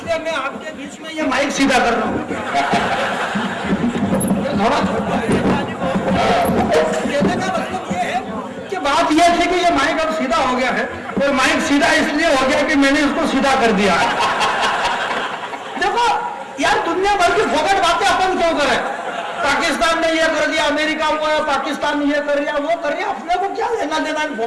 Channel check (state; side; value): identical; both; correlation 1.00